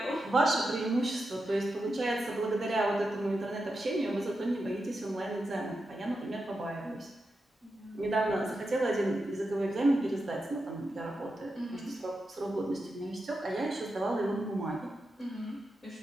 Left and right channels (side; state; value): both; normal; correlation 0.88